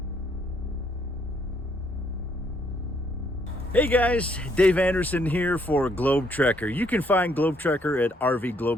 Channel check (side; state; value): both; normal; correlation 0.70